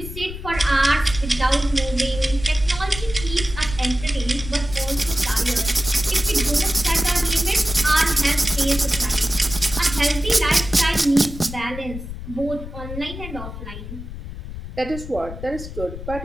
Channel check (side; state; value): left; noise; rumble, 10 dB below the sound